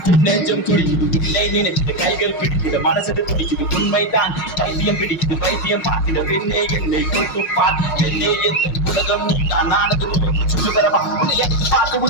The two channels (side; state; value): right; late; 5.5 ms